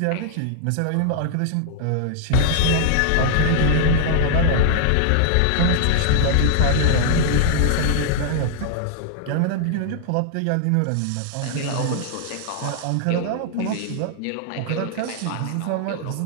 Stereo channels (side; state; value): both; different; correlation -0.01